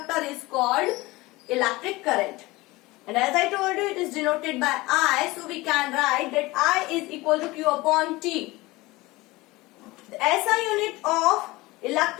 is called electric current. And as I told you, it is denoted by I, so we can write that I is equal to Q upon T. The SI unit of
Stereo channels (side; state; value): right; quieter; 20.9 dB